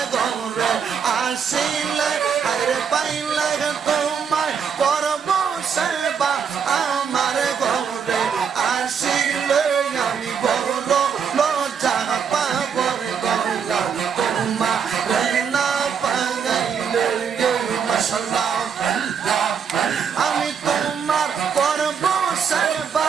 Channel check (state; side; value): quieter; left; 6.9 dB